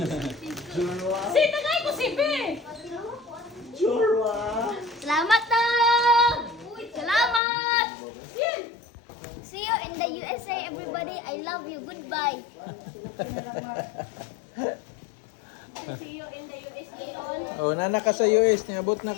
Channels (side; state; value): right; drops out; at 7.4 s